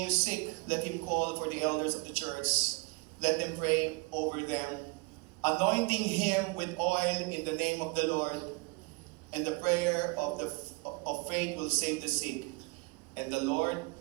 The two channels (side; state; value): left; quieter; 28.6 dB